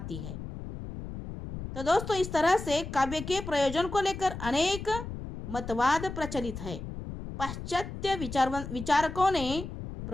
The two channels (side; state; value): left; noise; rumble, 9 dB below the sound